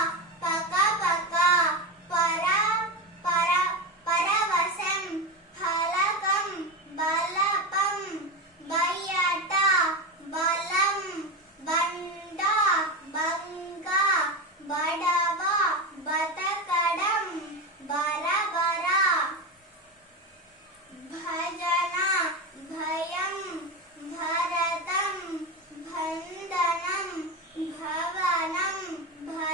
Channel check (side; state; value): both; normal; correlation 0.18